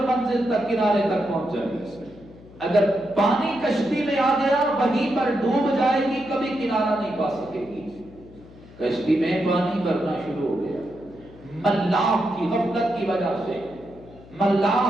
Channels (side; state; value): left; noise; hum, 21 dB below the sound